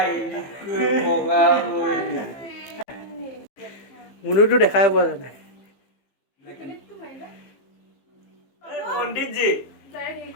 বগা কই মুনুটো দেখাই পোৱা যায় पंडित जी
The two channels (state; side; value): late; right; 15 ms